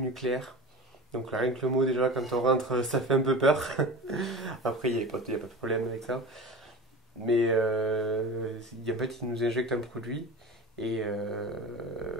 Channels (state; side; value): normal; both; correlation 0.32